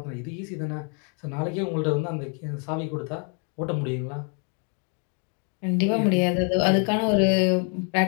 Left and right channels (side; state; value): right; quieter; 39.5 dB